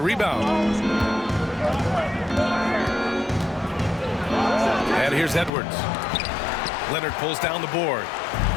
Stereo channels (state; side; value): drops out; right; at 5.5 s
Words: rebound. And here's Edwards. Leonard pulls down the board.